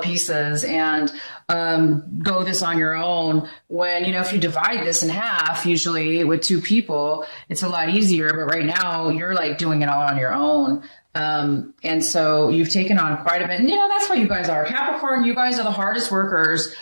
pieces and go this on your own. When, if you divide this in half, usually with two people, it's a lot easier. But right now, you're like doing it all on your own. And so you've taken on quite a bit. And, that's what you guys are. Capricorn, you guys are the hardest workers,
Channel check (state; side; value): inverted; both; correlation -1.00